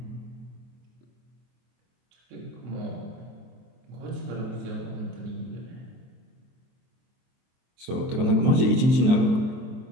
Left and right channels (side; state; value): left; late; 23 ms